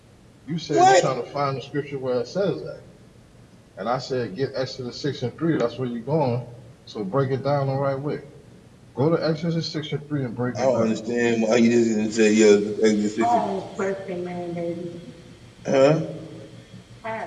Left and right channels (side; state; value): both; identical; correlation 1.00